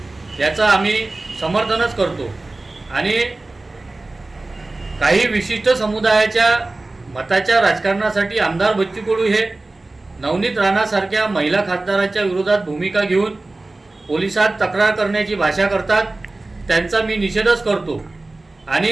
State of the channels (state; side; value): quieter; left; 3.0 dB